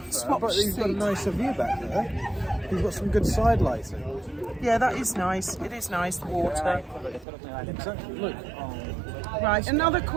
swap But you've got a seats. nicer view back there. You've got some good side lighting. Yeah, that is nice. It is nice, the water. Exactly. Look. Right, another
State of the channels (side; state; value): left; drops out; at 7.2 s